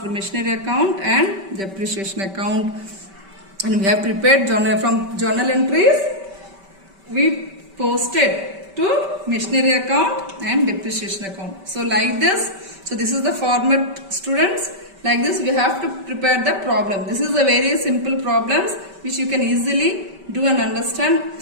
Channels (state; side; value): late; left; 5.2 ms